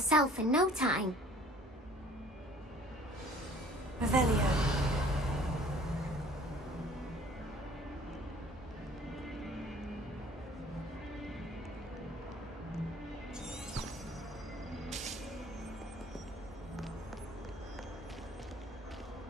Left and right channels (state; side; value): normal; both; correlation 0.53